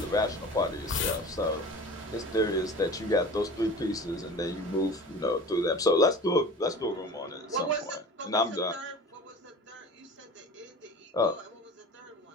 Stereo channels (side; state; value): both; normal; correlation 0.38